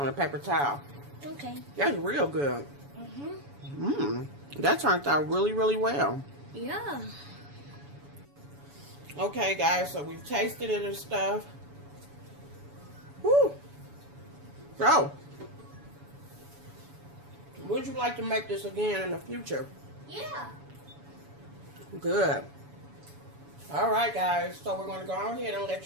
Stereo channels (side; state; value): left; late; 7.0 ms